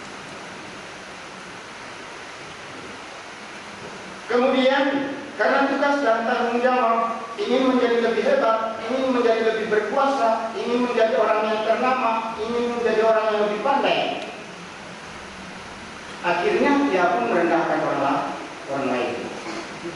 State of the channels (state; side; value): identical; both; correlation 1.00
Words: Kemudian, karena tugas dan tanggung jawab, ingin menjadi lebih hebat, ingin menjadi lebih berkuasa, ingin menjadi orang yang ternama, ingin menjadi orang yang lebih pandai, akhirnya dia pun merendahkan orang lain.